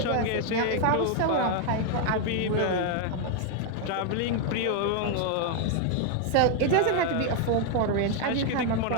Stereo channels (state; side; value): different; both; correlation 0.00